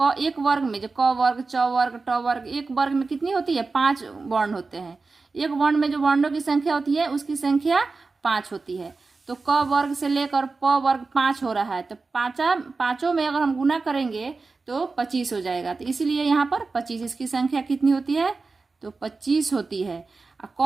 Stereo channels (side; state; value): left; quieter; 4.0 dB